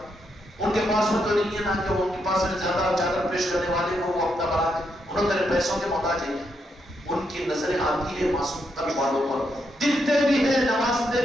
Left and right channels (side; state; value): both; normal; correlation 0.80